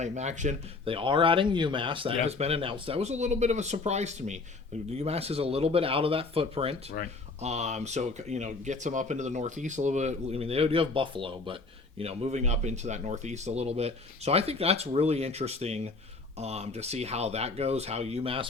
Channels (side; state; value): right; quieter; 3.7 dB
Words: action. They are adding UMass. That has been announced. That was a little bit of a surprise to me. UMass is a little bit out of that footprint. Right. So gets them up into the Northeast a little bit. I mean, they do have Buffalo, but moving up into that Northeast a little bit. So I think that's really interesting. to see how that goes, how